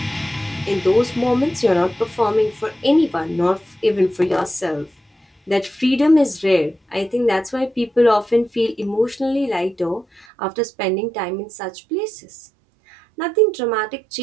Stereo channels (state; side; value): drops out; left; at 10.2 s